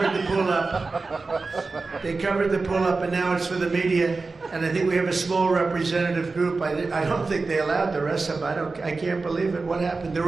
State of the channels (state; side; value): quieter; left; 3.9 dB